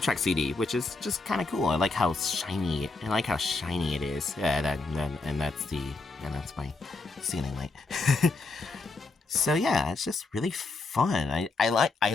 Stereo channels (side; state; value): right; quieter; 3.6 dB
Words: CD, which is just kind of cool. I like how shiny it is. Yeah, and that's my ceiling light. So yeah, it's just really fun. I